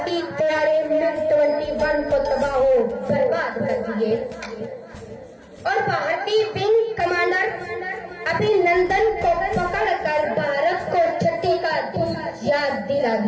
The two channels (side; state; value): both; identical; correlation 1.00